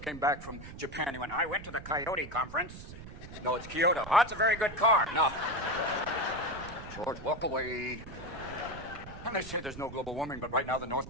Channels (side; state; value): right; noise; rumble, 13 dB below the sound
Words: came back from Japan. He went, I went to the Coyote conference. No, it's Kyoto. Oh, it's a very good car. No. George, walk away. And they say there's no global warming, but right now the North